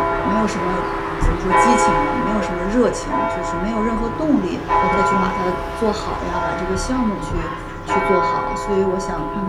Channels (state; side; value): identical; both; correlation 1.00